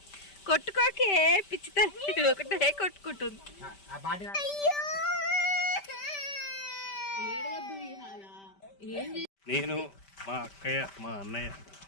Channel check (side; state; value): right; late; 5.1 ms